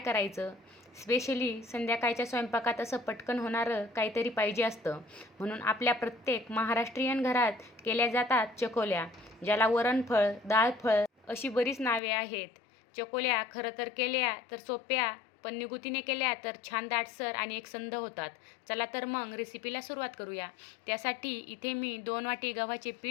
स्पेशली संध्याकाळच्या स्वयंपाकात असं पटकन होणारं काहीतरी पाहिजे असतं. म्हणून आपल्या प्रत्येक महाराष्ट्रीयन घरात केल्या जातात चकोल्या, ज्याला वरणफळ, डाळफळ अशी बरीच नावे आहेत. चकोल्या खरं तर केल्या तर सोप्या, पण निगुतीने केल्या तर छान दाटसर आणि एकसंध होतात. चला तर मग रेसिपीला सुरुवात करूया. त्यासाठी इथे मी 2 वाटी गव्हाचे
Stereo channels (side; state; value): right; drops out; at 12.0 s